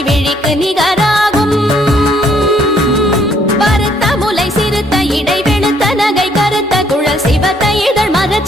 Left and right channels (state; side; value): normal; both; correlation 0.67